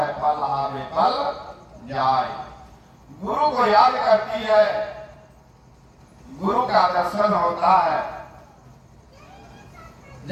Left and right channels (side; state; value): both; identical; correlation 1.00